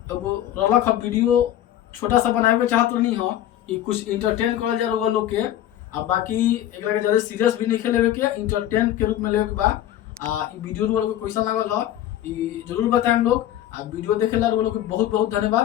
रलक वीडियो छोटा सा बनाए के चाहत नहीं हो। ये कुछ इंटरटेन करल जा रहा लोग के। बाकी एक ज़्यादा सीरियस भी नहीं लेवे के, इंटरटेन के रूप में लेवे के बा। वीडियो लोग कैसा लागल हो जरूर बताएं हम लोग। वीडियो देखे ला लोग बहुत बहुत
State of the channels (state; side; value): quieter; right; 12.3 dB